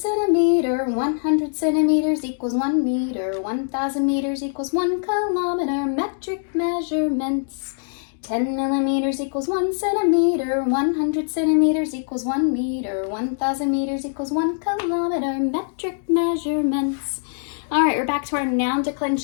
100 centimeters equals 1 meter, 1,000 meters equals 1 kilometer, metric measurements. 10 millimeters equals 1 centimeter, 100 centimeters equals 1 meter, 1,000 meters equals 1 kilometer, metric measurements. All right, we're back to our noun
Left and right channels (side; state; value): right; silent; digital silence